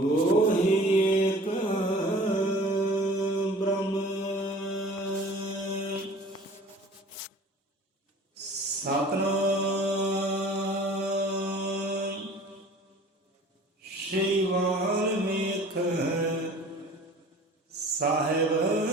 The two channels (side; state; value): both; normal; correlation 0.46